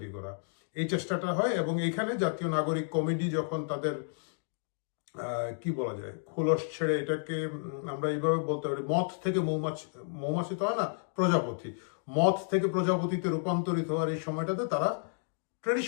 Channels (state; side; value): silent; right; digital silence